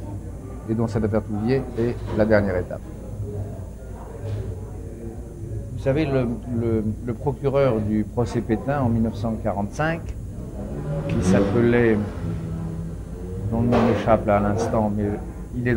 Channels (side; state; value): both; identical; correlation 1.00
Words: et dont cette affaire Touvier est la dernière étape. Vous savez, le procureur du procès Pétain en 1945, qui s'appelait, dont le nom m'échappe là à l'instant, mais il est